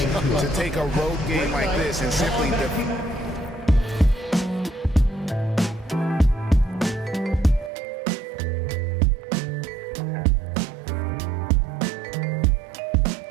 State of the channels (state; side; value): drops out; left; at 7.7 s